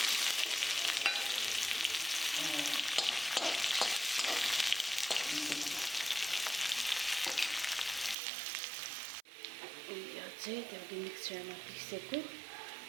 यो चाहिँ त्यो मिक्सरमा पिसेको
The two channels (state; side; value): drops out; left; at 8.2 s